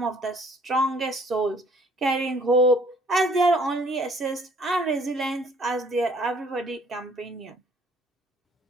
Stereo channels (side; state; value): both; normal; correlation 0.59